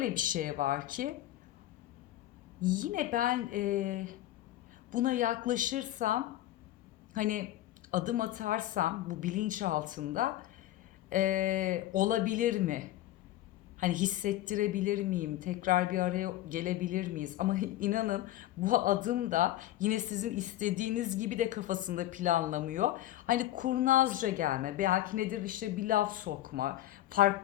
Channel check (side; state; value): right; quieter; 14.3 dB